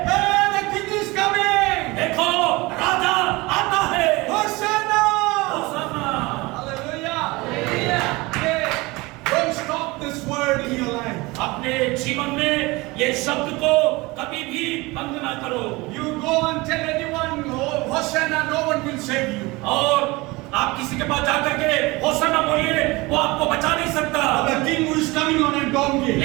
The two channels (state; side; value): quieter; left; 22.9 dB